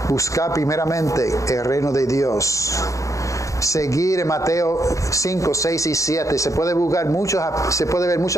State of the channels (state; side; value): late; right; 0.15 ms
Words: Buscar primeramente el reino de Dios. Seguir en Mateo 5, 6 y 7. Se puede ver